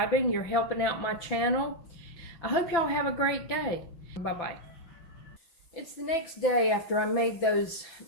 You're helping out my channel. I hope y'all have a great day. Bye-bye. It's the next day after I made those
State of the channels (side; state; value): right; late; 6.0 ms